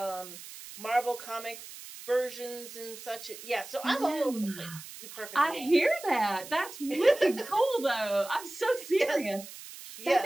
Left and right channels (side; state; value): right; noise; hiss, 14 dB below the sound